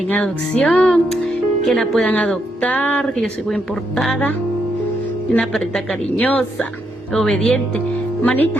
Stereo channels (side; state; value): both; normal; correlation 0.78